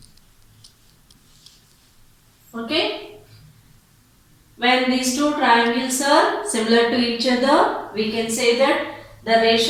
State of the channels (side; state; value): both; identical; correlation 1.00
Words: Okay. When these two triangles are similar to each other, we can say that the